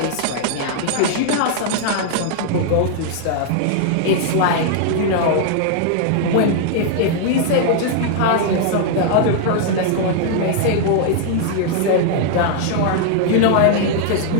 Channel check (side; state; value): both; different; correlation -0.01